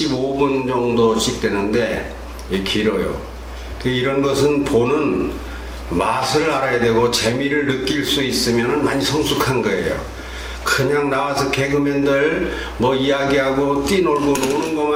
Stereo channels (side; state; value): both; identical; correlation 1.00